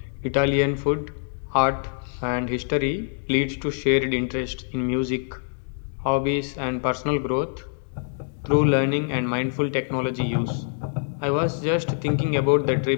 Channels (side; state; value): right; silent; digital silence